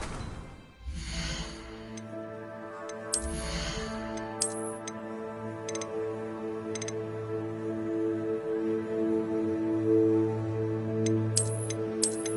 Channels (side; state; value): both; identical; correlation 1.00